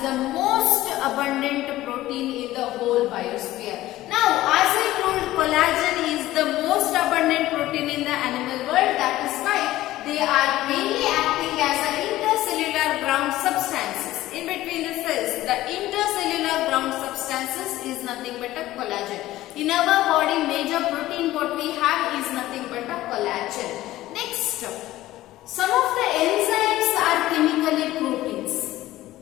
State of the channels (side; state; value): right; quieter; 15.7 dB